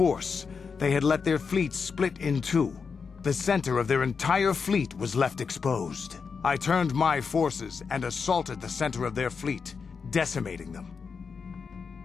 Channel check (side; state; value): right; quieter; 5.5 dB